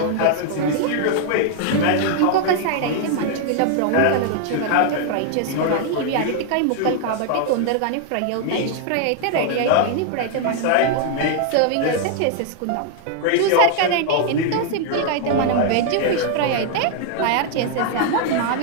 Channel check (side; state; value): both; different; correlation 0.00